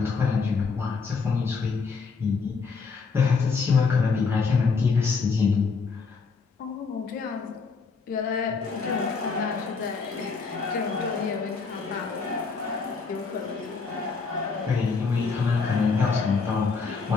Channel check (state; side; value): quieter; right; 4.9 dB